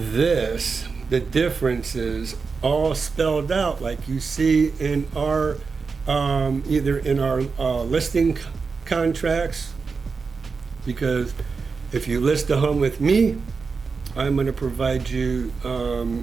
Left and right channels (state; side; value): quieter; left; 4.8 dB